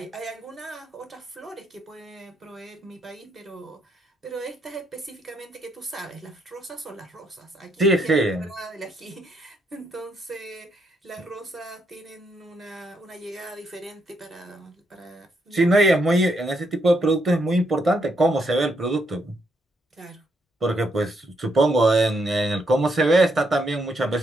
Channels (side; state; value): both; normal; correlation 0.77